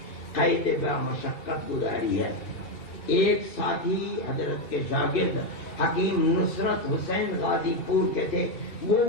قید بہ مشقت گزاری ہے۔ ایک ساتھی حضرت کے شاگرد حکیم نصرت حسین غازی پور کے تھے، وہ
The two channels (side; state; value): right; late; 2.3 ms